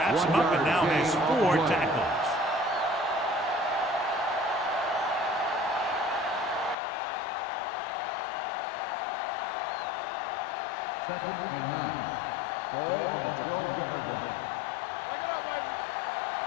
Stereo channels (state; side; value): drops out; right; at 6.8 s